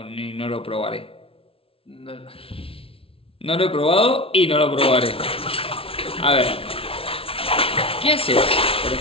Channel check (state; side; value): late; right; 0.26 ms